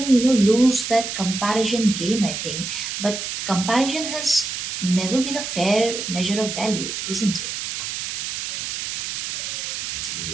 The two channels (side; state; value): right; noise; hiss, 4 dB below the sound